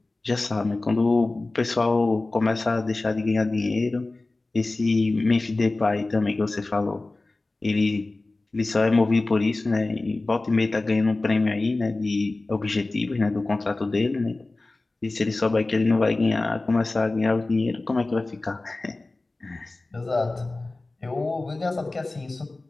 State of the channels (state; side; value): quieter; right; 3.1 dB